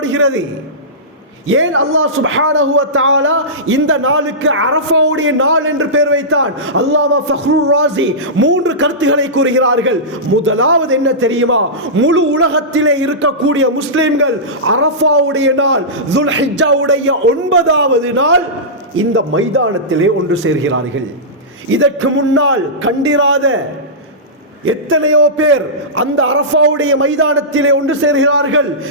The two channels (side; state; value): both; normal; correlation -0.17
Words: ஏன் அல்லாஹ் சுப்ஹானஹு வ தஆலா இந்த நாளுக்கு அரஃபாவுடைய நாள் என்று பெயர் வைத்தான்? அல்லாமா ஃபக்ருர் ராஸி 3 கருத்துக்களை கூறுகிறார்கள். முதலாவது என்ன தெரியுமா? முழு உலகத்திலே இருக்கக்கூடிய முஸ்லிம்கள் அரஃபாவுடைய நாள் துல்ஹிஜ்ஜாவுடைய 9வது நாள் இந்த மைதானத்திலே ஒன்று சேர்கிறார்கள். இதற்கு முன்னால் கண்டிராத எத்தனையோ பேர் அந்த அரஃபாவுடைய மைதானத்திலே ஒன்று சேர்கிறார்கள்.